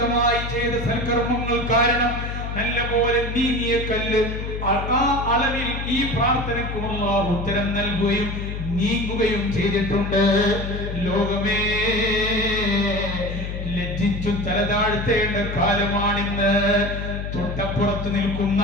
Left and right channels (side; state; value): left; noise; hum, 5 dB below the sound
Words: ചെയ്ത സൽക്കർമ്മങ്ങൾ കാരണം നല്ലപോലെ നീങ്ങിയ കല്ല് ആ അളവിൽ ഈ പ്രാർത്ഥനയ്ക്ക് അല്ലാഹു ഉത്തരം നൽകുകയും നീങ്ങുകയും ചെയ്തിട്ടുണ്ട്. ലോകമേ, ലജ്ജിച്ചു തലതാഴ്ത്തേണ്ട കാലമാണിന്ന്. തൊട്ടപ്പുറത്ത് നിൽക്കുന്ന